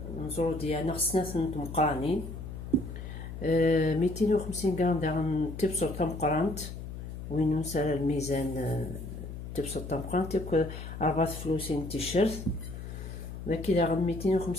نزرو ديالنا خصنا ثنت مقرانين 250 غرام داغن تبصر تمقرانت وين نسال الميزان تبصر تمقرانت ياك 4 فلوسين تيشيرت داكي داغن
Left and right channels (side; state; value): left; noise; hum, 9 dB below the sound